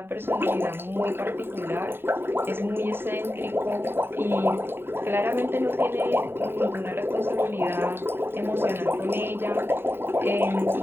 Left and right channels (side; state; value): left; late; 0.11 ms